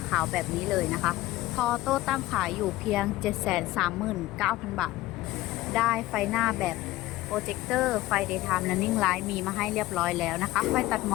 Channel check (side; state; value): right; quieter; 17.3 dB